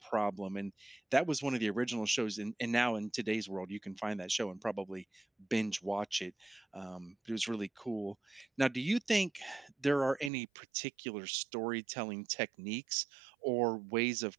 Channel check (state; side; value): drops out; left; at 10.3 s